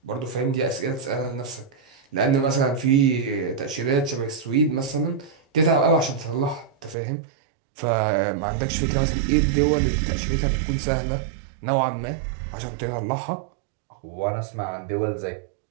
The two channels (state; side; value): drops out; left; at 7.0 s